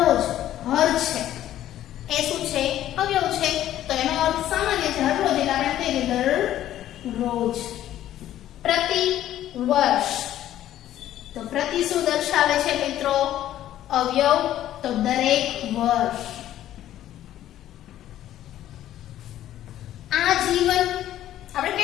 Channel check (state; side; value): quieter; right; 12.6 dB